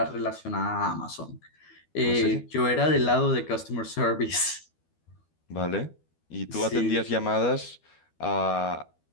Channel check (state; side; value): late; right; 12 ms